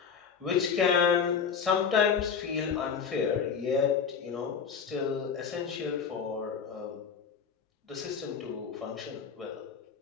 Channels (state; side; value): quieter; right; 6.6 dB